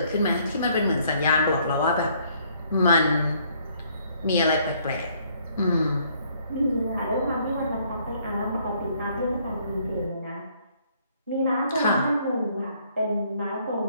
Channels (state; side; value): inverted; both; correlation -0.65